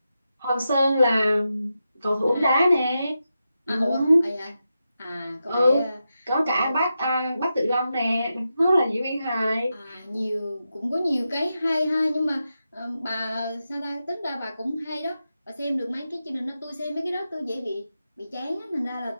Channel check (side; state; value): both; inverted; correlation -0.89